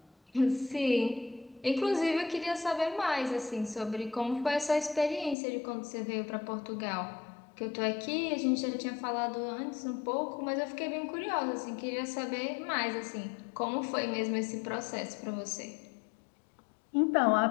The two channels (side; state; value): right; drops out; at 5.4 s